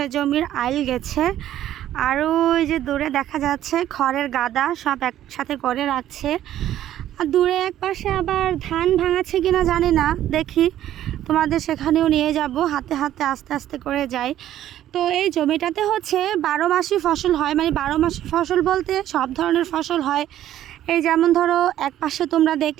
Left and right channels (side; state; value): left; quieter; 12.3 dB